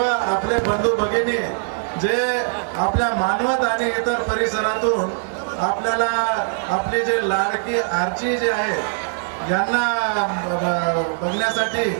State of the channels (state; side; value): silent; left; 65 dB below the other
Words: आपले बंधू भगिनी जे आपल्या मानवत आणि इतर परिसरातून आपल्याला आपली जे लाडकी आरची जे आहे यांना बघण्यासाठी